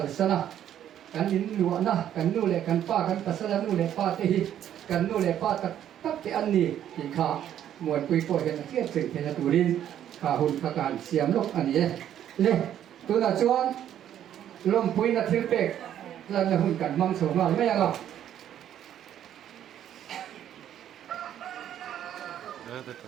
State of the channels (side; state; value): left; quieter; 10.6 dB